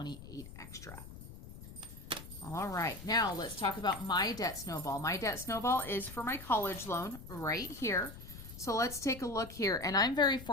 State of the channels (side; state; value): left; noise; rumble, 14 dB below the sound